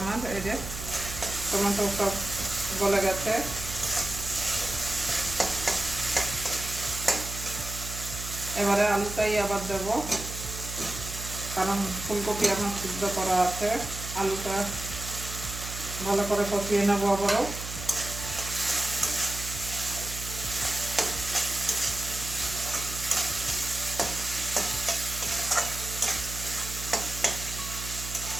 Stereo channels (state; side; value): noise; right; hum, 8 dB below the sound